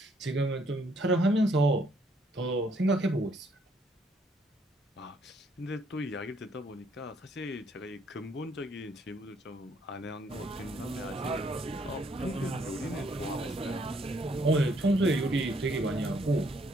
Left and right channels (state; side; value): normal; both; correlation 0.69